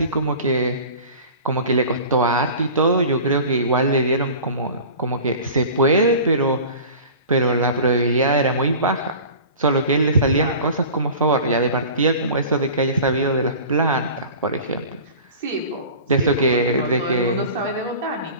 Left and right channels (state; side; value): inverted; both; correlation -0.40